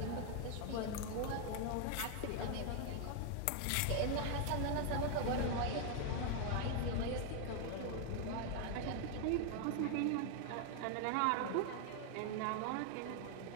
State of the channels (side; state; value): both; different; correlation 0.00